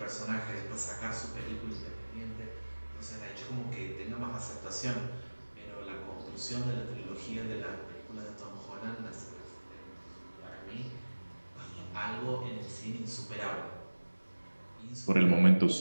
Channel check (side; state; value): both; inverted; correlation -1.00